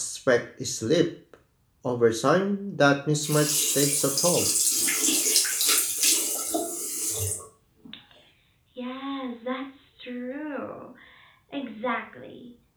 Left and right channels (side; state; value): both; identical; correlation 1.00